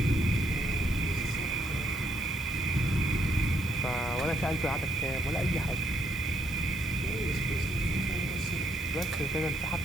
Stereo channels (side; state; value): both; normal; correlation 0.72